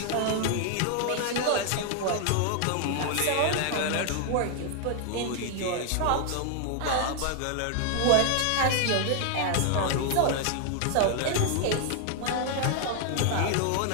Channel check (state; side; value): different; both; correlation 0.00